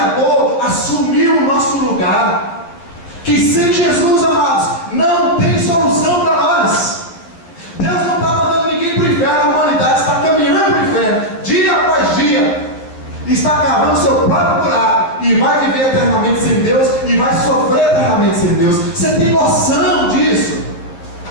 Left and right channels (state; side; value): late; right; 12 ms